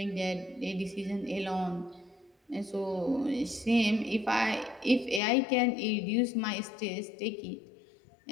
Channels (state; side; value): drops out; right; at 5.2 s